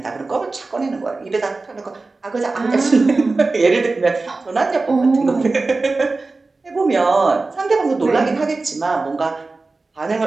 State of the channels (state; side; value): quieter; left; 3.6 dB